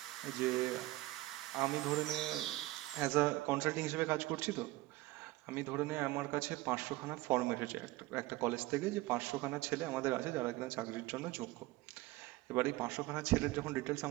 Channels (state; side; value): quieter; left; 18.9 dB